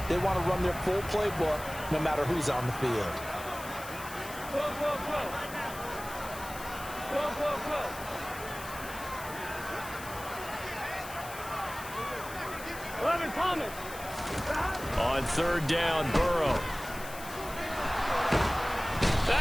they want to run their full playbook no matter who's on the field. Go. 11 Thomas. On 3rd down, Burrow.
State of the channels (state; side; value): noise; left; hiss, 13 dB below the sound